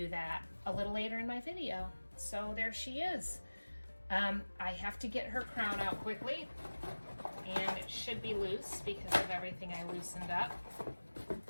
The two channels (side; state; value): both; inverted; correlation -1.00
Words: that a little later in my video. So there she is. I have to get her crown out quickly, and it should be loose because of everything I loosened up.